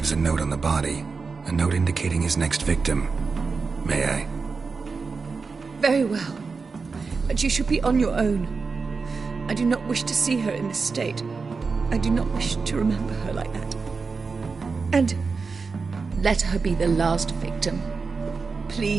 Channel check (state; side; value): quieter; left; 4.7 dB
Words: a note on the body. A note indicating his next victim. May I? Very well. But you should be on your own. I do not wish to see her in this state. I do not wish to remember her like that. And let her be the last victim.